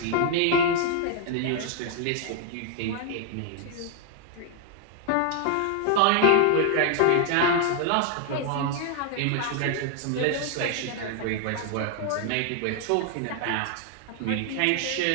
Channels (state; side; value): different; both; correlation 0.00